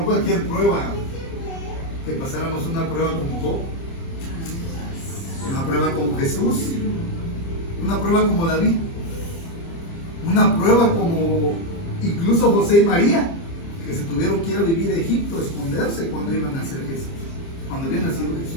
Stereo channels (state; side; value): late; right; 30 ms